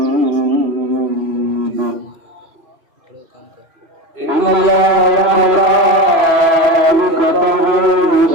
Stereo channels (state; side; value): late; left; 3.0 ms